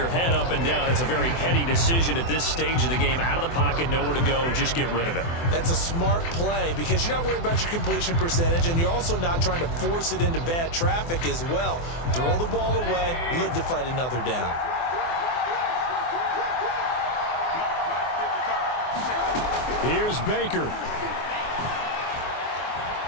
head up and down. It's a very heady decision at this stage of the game. Out of the pocket, nowhere to go. Just get rid of it. That's a smart play because you're not worried about your completion percentage, and you're also not trying to force it into bad traffic as well. Throw the ball away, live to fight another down. Here's Baker.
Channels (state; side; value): late; right; 24 ms